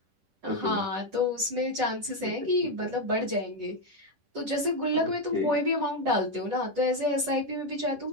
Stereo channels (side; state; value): left; late; 10 ms